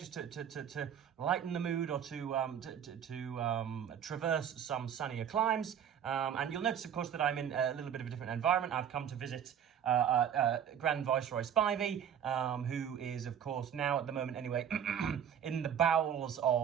to lighten the mood or to traverse some sunnier climes. And you'll notice, of course, that I'm in a little bit of a different environment. I've come to visit Grand Viceroy Spivey, who is, of course, now at the moment anyway, in the bowels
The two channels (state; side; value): quieter; left; 8.8 dB